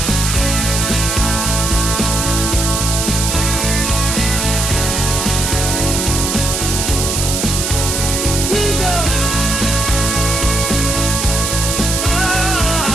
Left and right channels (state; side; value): noise; right; hiss, 1 dB below the sound